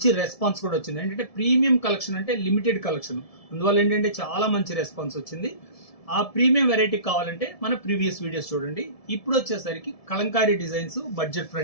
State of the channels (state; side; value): late; right; 1.7 ms